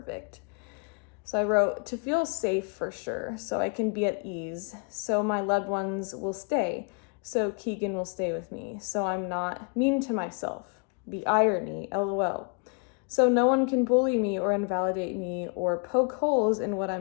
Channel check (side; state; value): right; quieter; 37.4 dB